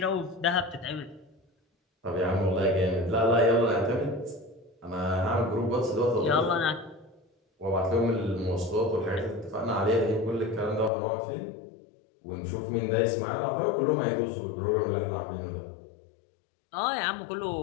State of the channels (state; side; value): drops out; right; at 10.9 s